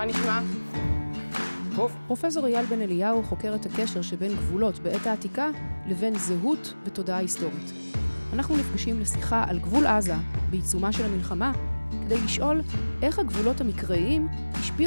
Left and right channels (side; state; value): both; inverted; correlation -1.00